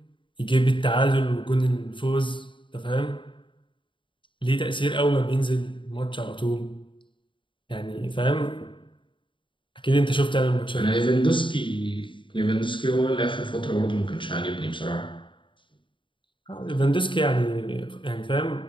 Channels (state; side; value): late; right; 0.24 ms